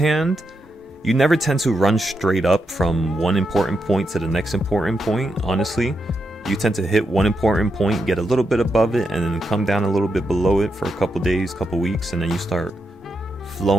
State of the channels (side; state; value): both; normal; correlation 0.84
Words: you never tend to run straight up from one important point to the next important point, honestly. You tend to hit one important point, get a little bit above it, and then come down a little bit below it for a couple days, couple weeks, and then you start